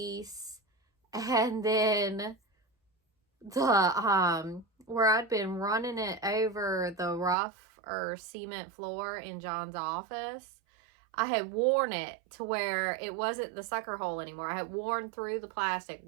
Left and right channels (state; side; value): drops out; left; at 7.4 s